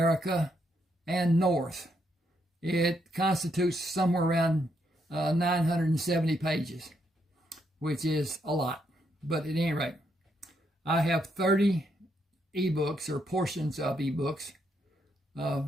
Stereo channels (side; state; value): both; normal; correlation 0.77